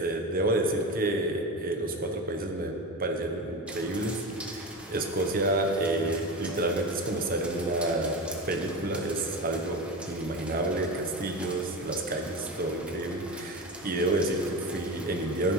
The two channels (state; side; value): normal; both; correlation 0.24